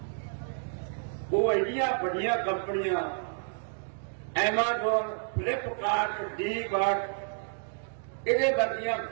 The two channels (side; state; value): left; silent; digital silence